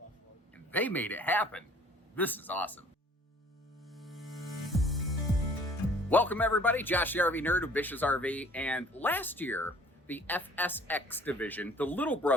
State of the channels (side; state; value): both; normal; correlation 0.53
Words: and they made it happen. This is awesome. Welcome everybody, Josh the RV Nerd of Bish's RV, and last year the FSX division, the little